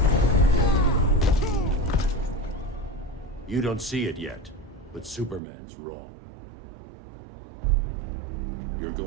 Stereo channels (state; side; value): drops out; left; at 5.4 s